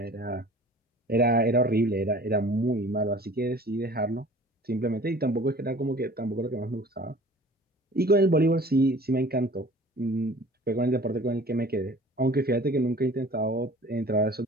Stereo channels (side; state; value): both; normal; correlation 0.47